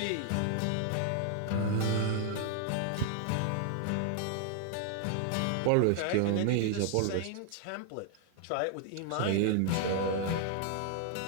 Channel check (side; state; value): both; different; correlation 0.00